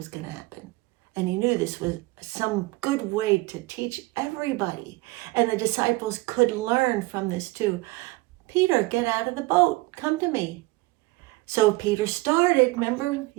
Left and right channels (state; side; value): quieter; left; 21.9 dB